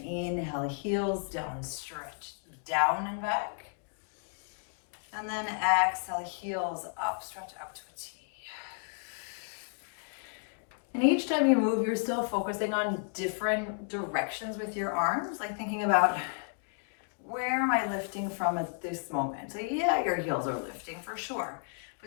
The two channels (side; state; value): right; silent; 56 dB below the other